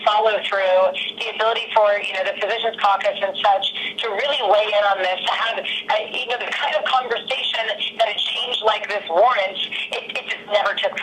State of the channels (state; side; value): identical; both; correlation 1.00